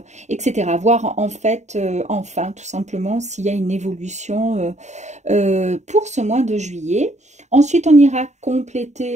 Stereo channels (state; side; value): late; left; 0.34 ms